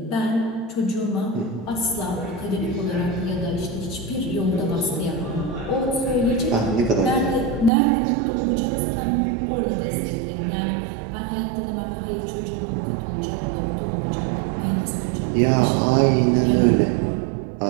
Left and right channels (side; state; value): left; drops out; at 7.7 s